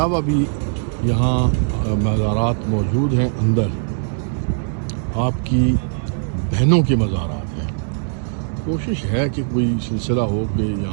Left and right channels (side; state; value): left; silent; digital silence